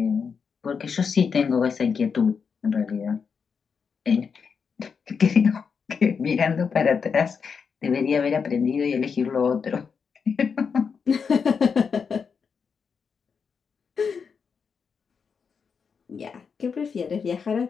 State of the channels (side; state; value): right; quieter; 6.0 dB